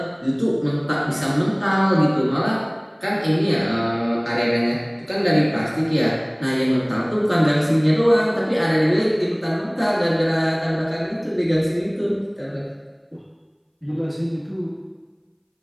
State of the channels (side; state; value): both; identical; correlation 1.00